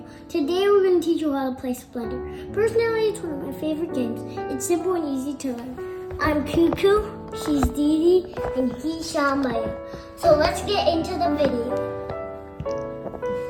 Today we're going to teach you how to play Splendor. Personally, it's one of my favorite games. It's simple and easy to learn. I'm Cuckoo, she's Dee Dee, and he's Shamaya. So let's get into the video.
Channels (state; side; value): identical; both; correlation 1.00